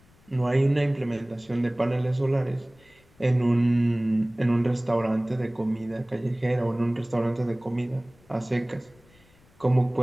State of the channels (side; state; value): left; noise; rumble, 30 dB below the sound